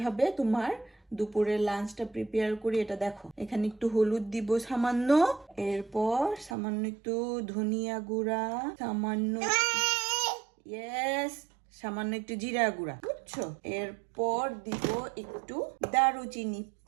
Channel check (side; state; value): left; drops out; at 6.6 s